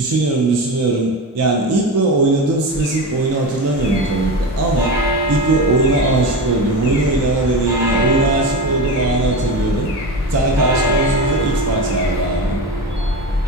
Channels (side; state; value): both; normal; correlation 0.23